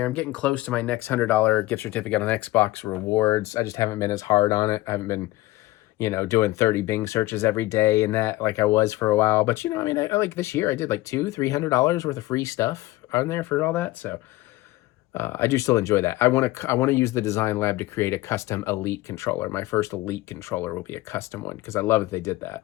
I'm getting close to my next $100 gift certificate on Xbox rewards. I just haven't been as hard on it. I haven't been, you know, doing 30 Bing searches every day and that like I was for a while. But, you know, I mean, I like this year I did like $200-$300 worth of free stuff on there for all that. So I do still enjoy that. I want to use the Design Lab to create a custom Elite controller. My first Elite controller will be a custom one because I love that they did that.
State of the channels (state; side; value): quieter; right; 18.3 dB